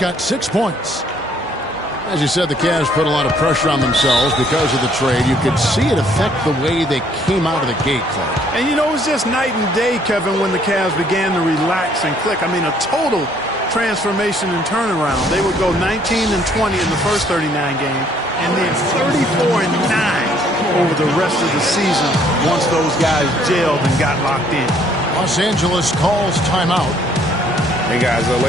6 points. As you said, the Cavs put a lot of pressure on themselves because of the trade. You could see it affect the way they came out of the gate, Clark. And, you know, it was just night and day, Kevin, when the Cavs began to relax and click. I mean, a total transformation and turnaround. They would go 19 and 20 in the first 39 games, and then 34 and 9 over the rest of the season once those guys gelled and got locked in. Los Angeles calls timeout. Hey guys, the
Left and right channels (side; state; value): both; normal; correlation 0.63